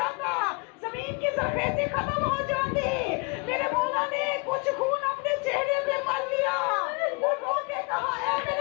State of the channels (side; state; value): right; quieter; 30.9 dB